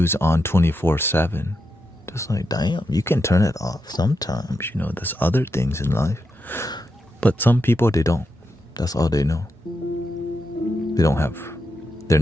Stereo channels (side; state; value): both; normal; correlation 0.85